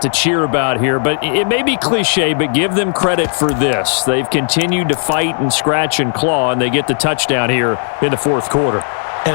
to cheer about here. But it may be cliche, but give them credit for this. They've continued to fight and scratch and claw, and they get the touchdown here in the fourth quarter.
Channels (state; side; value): silent; right; digital silence